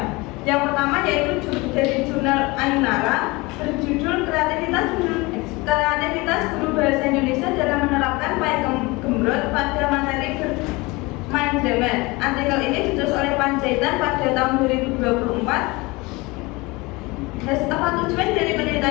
Yang pertama yaitu dari jurnal Ainara berjudul kreativitas guru bahasa Indonesia dalam menerapkan Pakem Gumrot pada materi bermain drama. Artikel ini ditulis oleh Panjaitan pada tahun 2024. Tujuan dari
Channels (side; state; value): right; quieter; 23.8 dB